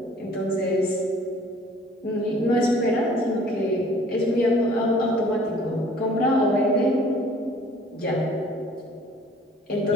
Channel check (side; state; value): both; normal; correlation 0.53